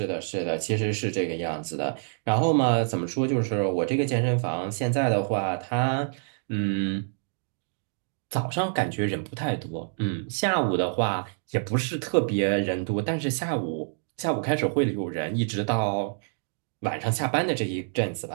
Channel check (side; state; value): left; silent; digital silence